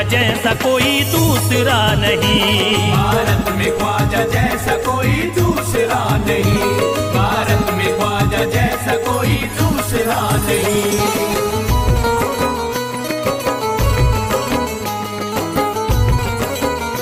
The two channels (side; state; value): both; identical; correlation 1.00